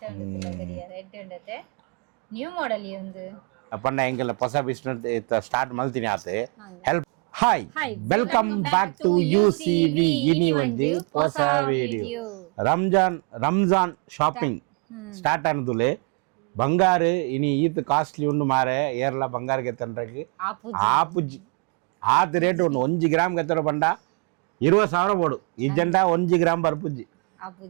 ನ್ಯೂ ಮಾಡೆಲ್ ಒಂದು ಪಂಡ ಎಂಗೆಲ್ಲ ಹೊಸ ಬಿಸ್ನೆಸ್ ಸ್ಟಾರ್ಟ್ ಮಲ್ತೀನಿ ಆತೆ help hi welcome back to UCV ಇನಿ ಒಂಜಿ ಹೊಸ ವಿಡಿಯೋ ರಂಜಾನ್ ಶಾಪಿಂಗ್ ಸ್ಟಾರ್ಟ್ ಆನದುಲೆ ಬಂಗಾರು ಇನಿ ಈತ್ ಕಾಸ್ಟ್ಲಿ ಉಂಡು ಮಾರೆ ಏರ್ಲ ಬಂಗಾರ ಗೆತ್ತಂಡ್ರಕ್ಕೆ ಆಪುಜಿ ಆತ್ ರೇಟ್ ಉಂಡು 1 ಗ್ರಾಮ್ ಗೆತ್ತರ ಬಂಡ 20,000 ಬೋಡು ಈ ಜಂಡ 1 ಗ್ರಾಮ್ ಬರ್ಪುಜಿ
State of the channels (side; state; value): left; quieter; 34.9 dB